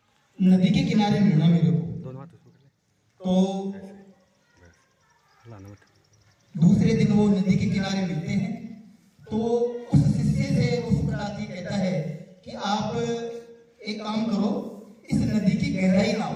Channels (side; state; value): both; identical; correlation 1.00